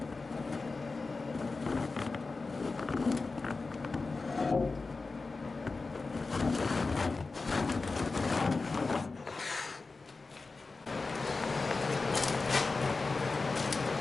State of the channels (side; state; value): right; quieter; 3.9 dB